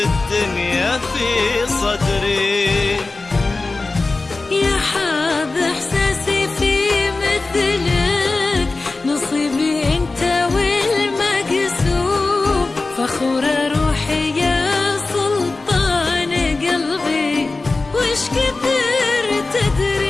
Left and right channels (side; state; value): right; quieter; 3.5 dB